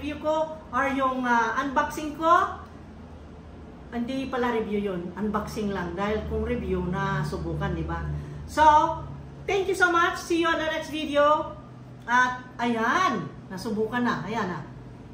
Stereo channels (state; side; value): identical; both; correlation 1.00